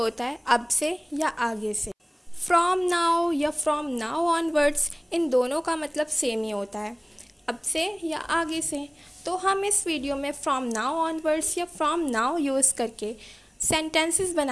होता है अब से या आगे से। फ्रॉम नाउ या फ्रॉम नाउ ऑनवर्ड्स, इन दोनों का मतलब सेम ही होता है, अब से या आगे से। तो हम इस वीडियो में फ्रॉम नाउ ऑनवर्ड्स या फ्रॉम नाउ यूज़ करके सेंटेंसेस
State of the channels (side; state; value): both; identical; correlation 1.00